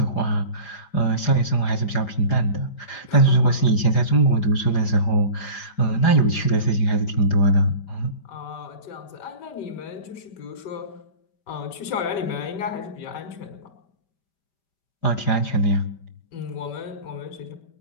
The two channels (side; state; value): right; late; 4.9 ms